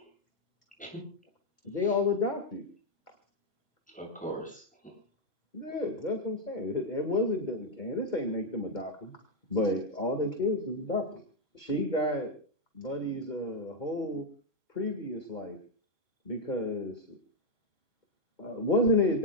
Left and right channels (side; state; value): both; normal; correlation 0.01